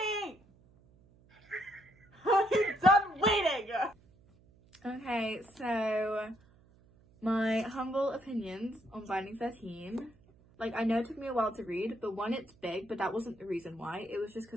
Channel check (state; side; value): noise; right; hum, 28 dB below the sound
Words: I'm done waiting! okay, so my humble opinions on Binding 13. Like, I know it took me a while to read, but one, it's big, but that wasn't the reason why. It was just